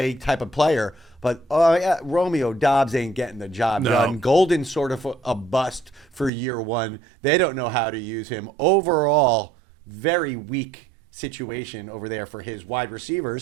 type of player. But Romeo Dobbs ain't getting the job done. Golden's sort of a bust for year one. They don't know how to use him. Overall, very weak situation over there for his wide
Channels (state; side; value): drops out; left; at 6.3 s